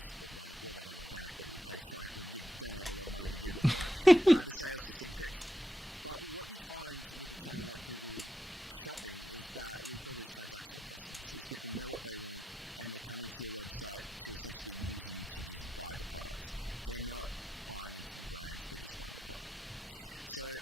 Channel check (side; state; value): both; normal; correlation 0.85